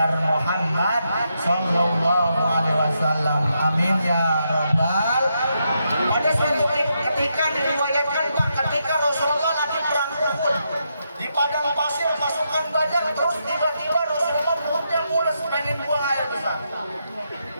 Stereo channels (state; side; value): inverted; both; correlation -0.82